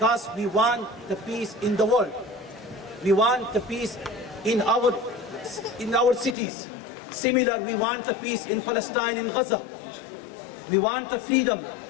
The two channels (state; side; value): drops out; right; at 6.4 s